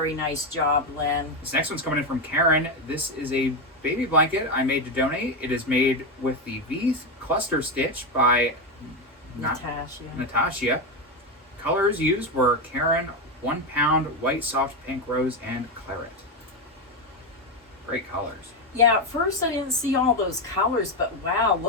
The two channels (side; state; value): both; normal; correlation 0.10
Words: nice job, Lynn. This next one's coming in from Karen. This is a baby blanket I made to donate. It is made with the V cluster stitch by Natasha. Colors used were Karen, 1 pound, white, soft, pink, rose, and claret. Great colors. Yeah, at first I didn't see all those colors, but wow,